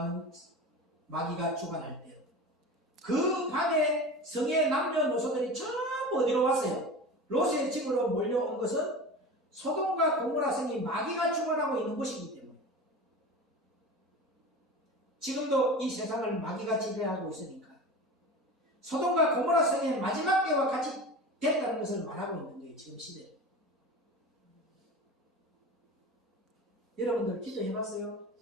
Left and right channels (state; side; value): normal; both; correlation 0.32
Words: 마귀가 주관할 때요. 그 밤에 성의 남녀노소들이 전부 어디로 왔어요? 롯의 집으로 몰려온 것은 소돔과 고모라 성이 마귀가 주관하고 있는 곳이기 때문에 지금도 이 세상을 마귀가 지배하고 있으니까 소돔과 고모라 성의 마지막 때와 같이 됐다는 것을 말하고 있는 거예요. 지금 시대에. 여러분들 기도해봤어요?